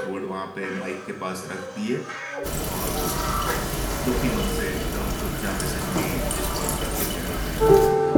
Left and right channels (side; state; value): both; identical; correlation 1.00